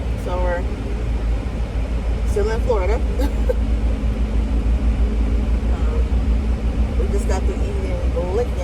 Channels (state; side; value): identical; both; correlation 1.00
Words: So we're still in Florida. We just got to eating